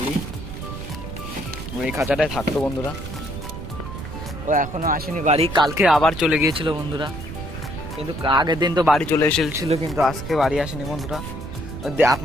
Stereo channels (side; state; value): right; noise; rumble, 9 dB below the sound